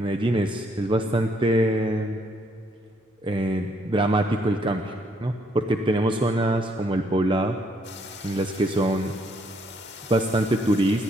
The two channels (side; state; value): both; normal; correlation 0.70